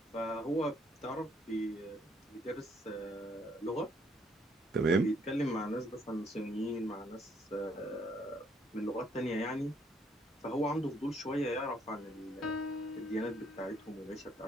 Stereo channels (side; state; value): both; normal; correlation 0.68